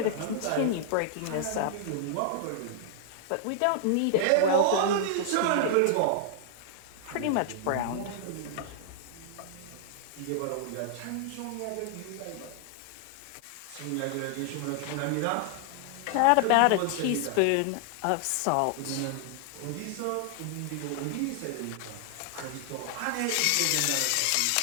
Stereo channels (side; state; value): both; different; correlation -0.01